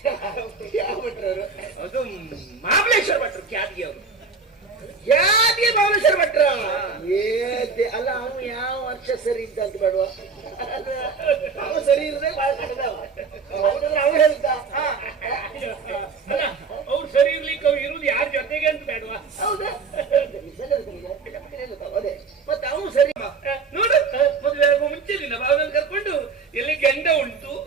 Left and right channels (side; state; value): left; quieter; 4.9 dB